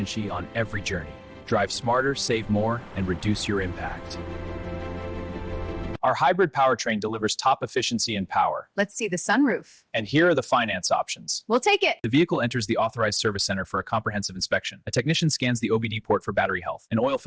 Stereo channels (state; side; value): identical; both; correlation 1.00